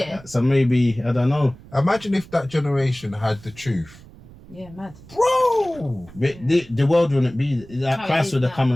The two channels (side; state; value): right; noise; rumble, 21 dB below the sound